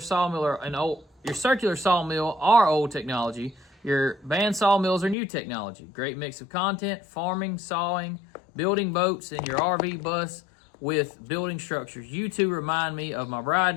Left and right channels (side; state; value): right; drops out; at 5.2 s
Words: sawmill are old technology. Your band sawmills are new technology. Great mix of content, farming, sawing, building boats, and your RV bus with building structures. You two remind me of my bride